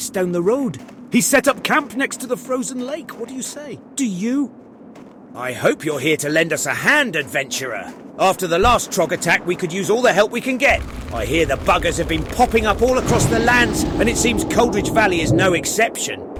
down the road. He's set up camp next to the frozen lake. What do you say? Do you? I hope you're here to lend us a hand, adventurer. After the last Trog attack, we could use all the help we can get. I hear the buggers have been popping up all across the lands, and it seems Coldridge Valley is no exception.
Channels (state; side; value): identical; both; correlation 1.00